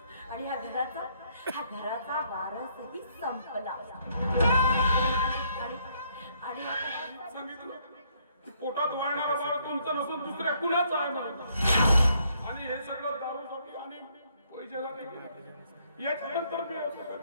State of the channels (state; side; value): inverted; both; correlation -0.69